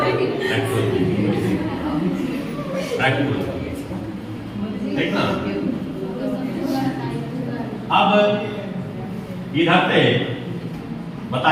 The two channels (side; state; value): both; identical; correlation 1.00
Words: ठीक ना? अब इधर से